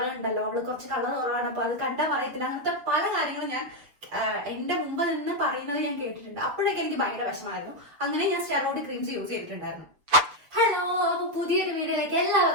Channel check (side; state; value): left; late; 6.8 ms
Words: ഉണ്ടല്ലോ, അവള് കുറച്ച് കളർ കുറവാണ്, അപ്പൊ അത് കണ്ടാൽ പറയത്തില്ല, അങ്ങനത്തെ പല കാര്യങ്ങളും ഞാൻ എന്റെ മുമ്പ് നിന്ന് പറയുന്നത് ഞാൻ കേട്ടിട്ടുണ്ട്. അപ്പോഴൊക്കെ എനിക്ക് ഭയങ്കര വിഷമായിരുന്നു. അങ്ങനെ ഞാൻ സ്റ്റെറോയിഡ് ക്രീംസ് യൂസ് ചെയ്തിട്ടുണ്ടായിരുന്നു. ഹലോ, അപ്പൊ പുതിയൊരു വീഡിയോയിലേക്ക്